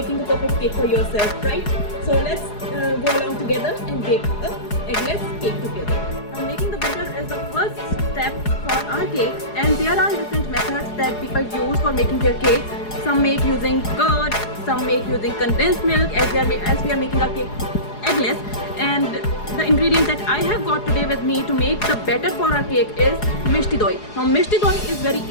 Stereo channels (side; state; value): right; late; 4.8 ms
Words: a perfect cake for yourself, right? So let's go along together and bake a eggless cake together. Now, making the batter is the first step for our cakes, and there are different methods that people use for making their cakes. Some make using curd, some make using condensed milk, as we are making our cake eggless. And the ingredient that I have got today with me to make the batter for our cake is Mishti Doi. Now Mishti Doi is very